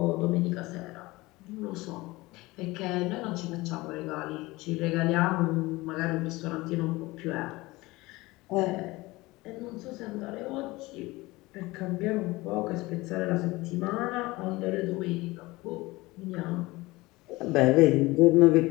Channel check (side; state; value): right; quieter; 21.0 dB